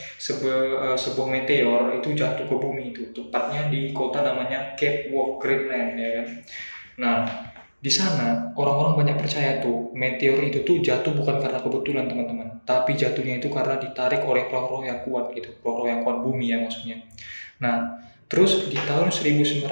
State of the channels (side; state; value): both; inverted; correlation -1.00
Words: Sebuah meteor itu jatuh ke bumi itu, tepatnya di kota namanya Cape Walk Greenland, ya kan? Nah, di sana orang-orang banyak percaya tuh meteor itu tuh jatuh bukan karena kebetulan teman-teman, tapi jatuhnya itu karena ditarik oleh roh-roh yang kuat gitu, roh-roh yang kuat bumi ya maksudnya. Nah, terus di tahun 1978